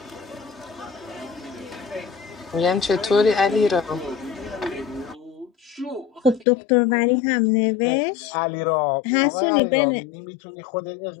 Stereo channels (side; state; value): right; drops out; at 6.5 s